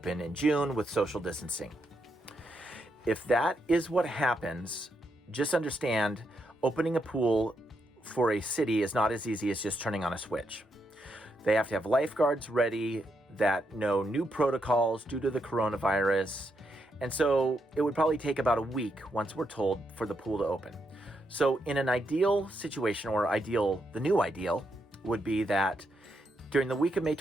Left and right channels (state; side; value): normal; both; correlation 0.81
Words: in June with social distancing. If that is what happens, just understand opening a pool for a city is not as easy as just turning on a switch. They have to have lifeguards ready that know new protocols due to the coronavirus. And so it would probably take about a week, once we're told, for the pool to open. So in an ideal situation, or the new ideal would be that during the week of May